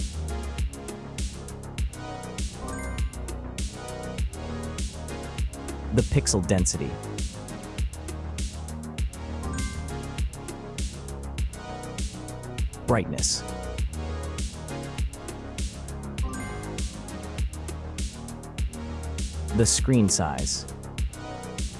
The pixel density. Brightness. The screen size.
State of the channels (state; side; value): identical; both; correlation 1.00